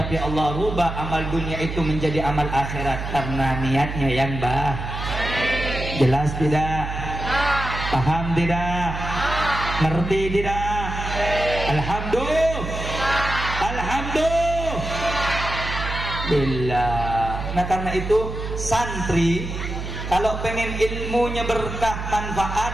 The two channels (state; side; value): noise; right; hum, 6 dB below the sound